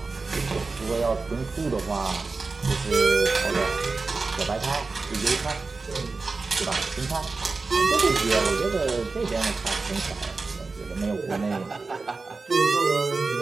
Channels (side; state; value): left; quieter; 4.0 dB